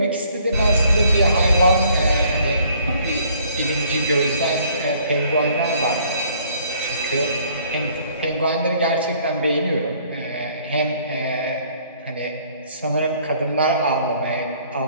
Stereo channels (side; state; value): both; inverted; correlation -0.60